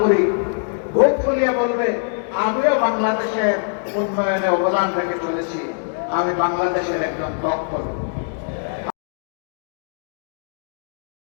বুক ফুলিয়ে বলবে আমিও বাংলাদেশের উন্নয়নে অবদান রেখে চলেছি, আমি বাংলাদেশের একজন দক্ষ।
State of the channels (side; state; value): right; silent; digital silence